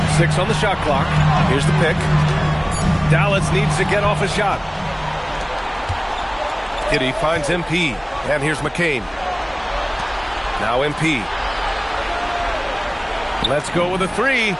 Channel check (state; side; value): identical; both; correlation 1.00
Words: 6 on the shot clock. Here's the pick. Dallas needs to get off a shot. Giddy finds MP. And here's McCain. Now MP. Let's go with a 3.